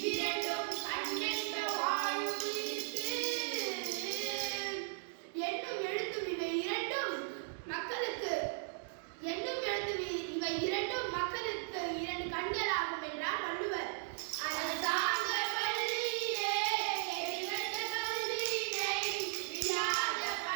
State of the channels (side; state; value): left; silent; digital silence